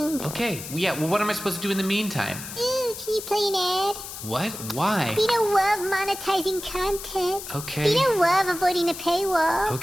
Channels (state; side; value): noise; left; hiss, 10 dB below the sound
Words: Okay, yeah, well, what am I supposed to do in the meantime? Ooh, can you play an ad? What? Why? Beano love monetizing content. Okay. Beano love avoiding the paywall.